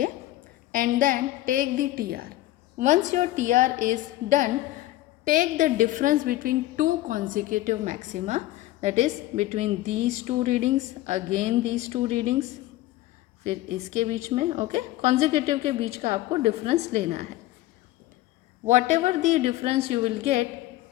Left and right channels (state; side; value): quieter; right; 16.1 dB